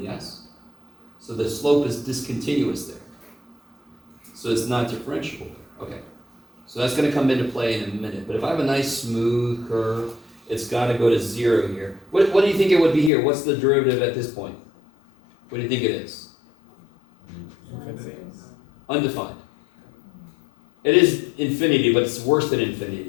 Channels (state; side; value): drops out; right; at 13.1 s